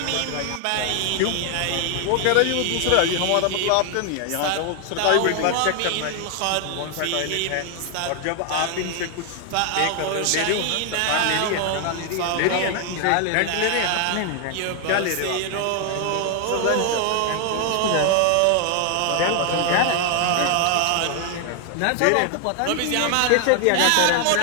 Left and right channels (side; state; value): both; different; correlation 0.00